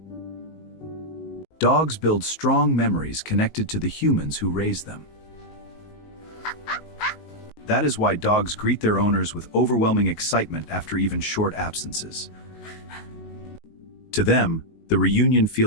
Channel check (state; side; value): late; right; 19 ms